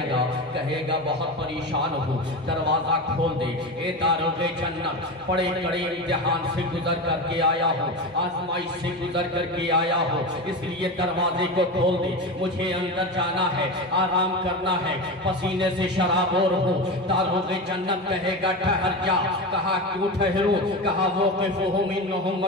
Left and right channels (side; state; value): both; normal; correlation 0.22